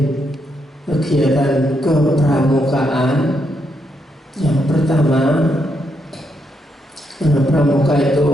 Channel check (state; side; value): normal; both; correlation 0.79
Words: kegiatan kepramukaan. Yang pertama, pramuka